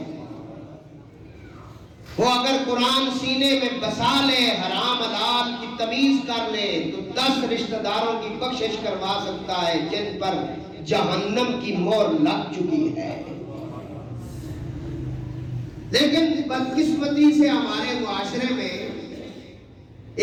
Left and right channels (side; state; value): both; identical; correlation 1.00